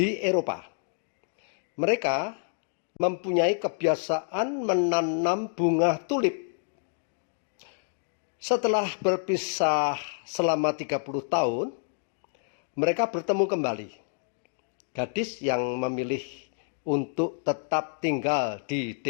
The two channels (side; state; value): right; silent; digital silence